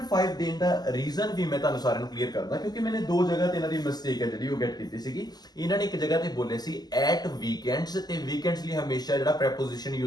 ਦੇਣ ਦਾ ਰੀਜ਼ਨ ਵੀ ਮੈਂ ਤੁਹਾਨੂੰ ਸਾਰਿਆਂ ਨੂੰ ਕਲੀਅਰ ਕਰਦਾ, ਕਿਉਂਕਿ ਮੈंने ਦੋ ਜਗ੍ਹਾ ਤੇ ਇਹਨਾਂ ਦੀ ਮਿਸਟੇਕ ਹੈ ਜਿਹੜੀ ਉਹ ਗੈਟ ਕੀਤੀ ਸੀਗੀ। ਇਹਨਾਂ ਨੇ ਇੱਕ ਜਗ੍ਹਾ ਤੇ ਬੋਲੇ ਸੀ ਐਟ ਵੀਕਐਂਡਸ, ਤੇ ਵੀਕਐਂਡਸ ਲਈ ਹਮੇਸ਼ਾ ਜਿਹੜਾ ਪ੍ਰੈਪੋਜੀਸ਼ਨ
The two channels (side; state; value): right; late; 0.20 ms